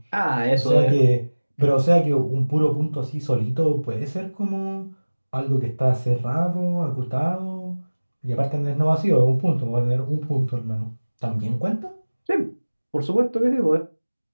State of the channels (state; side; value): inverted; both; correlation -1.00